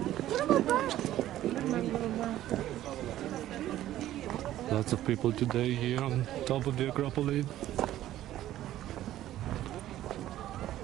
Lots of people today here on top of the Acropolis.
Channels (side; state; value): left; quieter; 13.5 dB